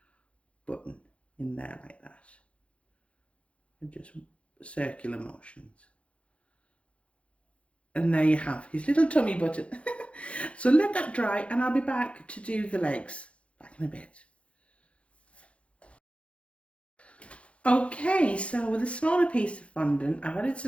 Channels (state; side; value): late; right; 0.061 ms